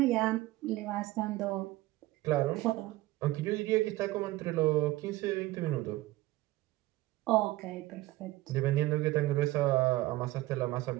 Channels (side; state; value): left; quieter; 18.0 dB